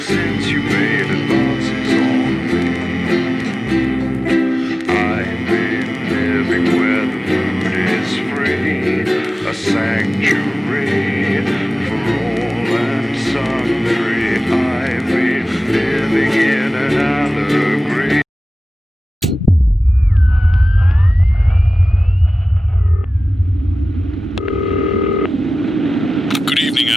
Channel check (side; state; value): both; normal; correlation 0.96